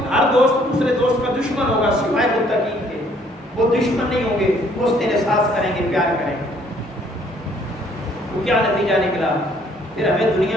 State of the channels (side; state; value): both; normal; correlation 0.63